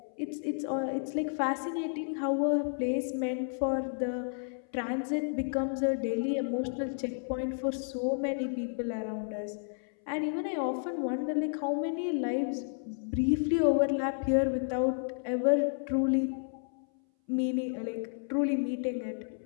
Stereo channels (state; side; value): silent; right; 57 dB below the other